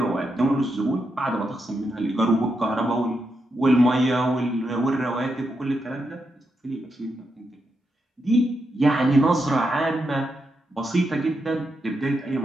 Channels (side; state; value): both; normal; correlation 0.84